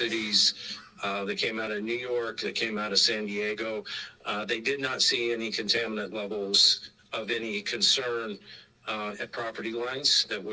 that came out of New York, that came out of San Diego, they did not see any contaminant levels of any concern at property lines that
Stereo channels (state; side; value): identical; both; correlation 1.00